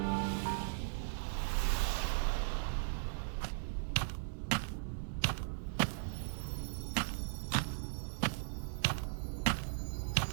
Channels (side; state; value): left; silent; digital silence